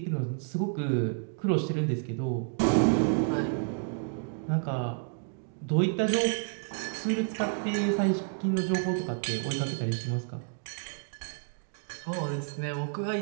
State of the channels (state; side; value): silent; left; 58 dB below the other